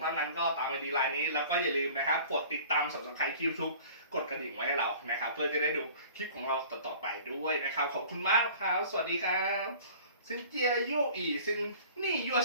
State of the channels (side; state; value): both; inverted; correlation -0.46